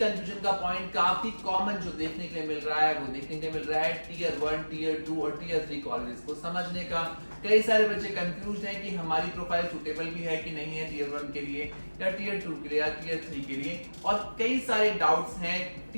का पॉइंट काफी कॉमन जो देखने के लिए मिल रहा है वो देखने के लिए मिल रहा है टीयर 1, टीयर 2 और टीयर 3 कॉलेजेस को समझने का। कई सारे बच्चे कंफ्यूज हैं कि हमारी प्रोफाइल सुटेबल भी है कि नहीं है टीयर 1 के लिए या टीयर 2 के लिए या टीयर 3 के लिए। और कई सारे डाउट्स हैं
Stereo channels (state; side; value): inverted; both; correlation -1.00